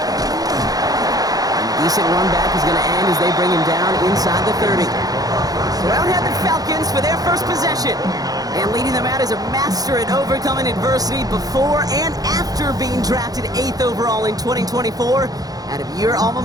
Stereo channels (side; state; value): left; late; 0.18 ms